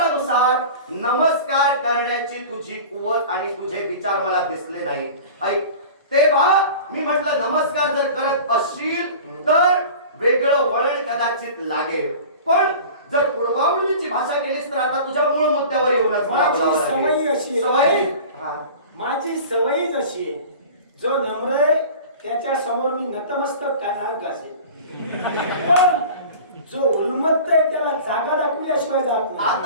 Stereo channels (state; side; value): inverted; both; correlation -0.39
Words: नमस्कार करण्याची तुझी कुवत आणि तुझे विचार मला दिसले नाही. ऐक, तेव्हा मी म्हटलं नमस्कार जर करत असशील तर वेगळं वळण कदाचित लागेल, पण जर पूर्वावळीची भाषा केलीस तर आता तुझ्या मूळ मुद्द्यावर येऊनच माझी सवय अशी आहे. माझी सवयच अशी आहे, जो नम्र आहे त्याच्या समोर मी नतमस्तक कानाक असेल, पण जो उन्मत्त आहे त्याला जागा दाखवल्याशिवाय जात नाही.